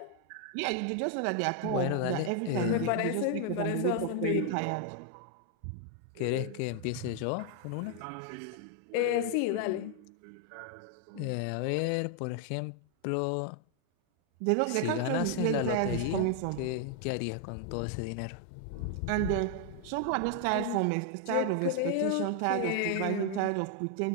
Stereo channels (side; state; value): both; different; correlation 0.00